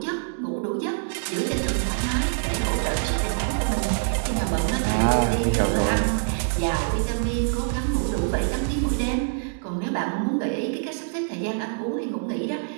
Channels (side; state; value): left; silent; digital silence